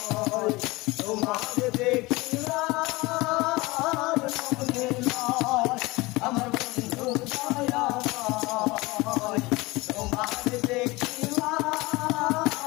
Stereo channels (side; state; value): right; quieter; 22.1 dB